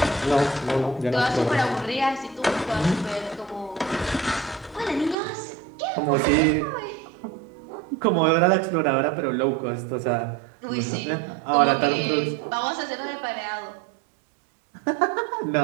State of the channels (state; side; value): drops out; left; at 5.2 s